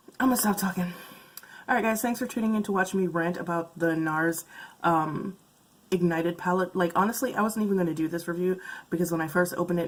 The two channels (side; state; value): both; identical; correlation 1.00